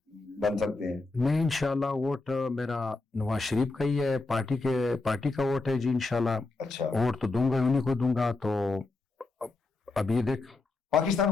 بن سکتے ہیں. میں انشاءاللہ ووٹ میرا نواز شریف کا ہی ہے، پارٹی کا ووٹ ہے جی انشاءاللہ. اچھا. ووٹ تو دوں گا، انہیں کو دوں گا. تو ابھی دیکھ پاکستان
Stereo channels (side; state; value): right; quieter; 3.5 dB